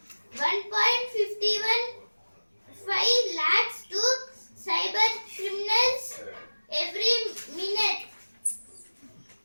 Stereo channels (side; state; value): both; inverted; correlation -1.00